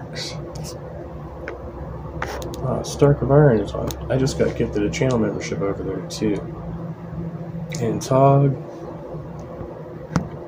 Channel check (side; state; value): both; identical; correlation 1.00